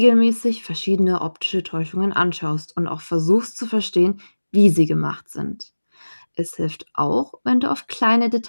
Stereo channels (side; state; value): both; inverted; correlation -1.00